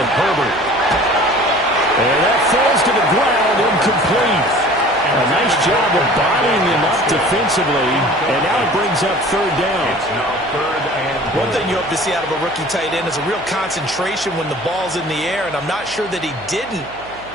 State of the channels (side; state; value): right; noise; hum, 21 dB below the sound